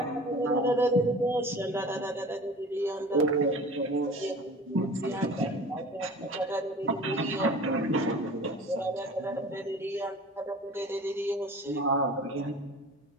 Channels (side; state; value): both; normal; correlation 0.41